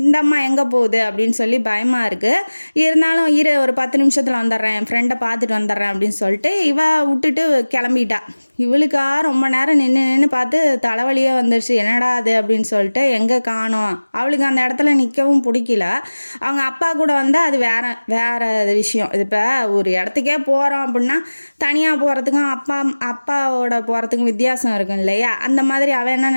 அம்மா எங்கே போகுது அப்படின்னு சொல்லி பயமாக இருக்குது. இருந்தாலும் ஒரு 10 நிமிஷத்தில் வந்துடுறேன், என் ஃப்ரெண்டை பார்த்துட்டு வந்துடுறேன் அப்படின்னு சொல்லிட்டு இவ விட்டுட்டு கிளம்பிட்டா. இவளுக்கா ரொம்ப நேரம் நின்று பார்த்து தலைவலியே வந்துடுச்சு, என்னடா அது அப்படின்னு சொல்லிட்டு எங்கே காணோம். அவளுக்கு அந்த இடத்துல நிற்கவும் பிடிக்கல. அவங்க அப்பா கூட வந்தால் அது வேறு விஷயம். இது இப்போ ஒரு இடத்துக்கே போகிறோம் அப்படின்னா தனியாக போகிறதுக்கும் அப்பாவோட போகிறதுக்கும் வித்தியாசம் இருக்கும் இல்லையா. அந்த மாதிரி அவன் என்ன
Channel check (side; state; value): both; inverted; correlation -1.00